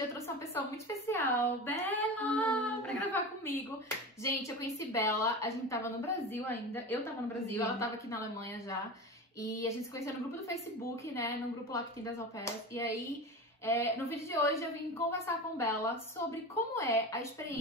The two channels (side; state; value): both; normal; correlation 0.28